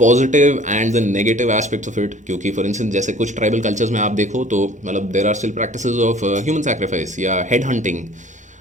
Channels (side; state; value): both; normal; correlation 0.50